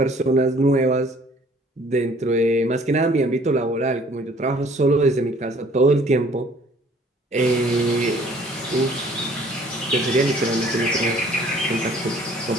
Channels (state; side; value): normal; both; correlation 0.56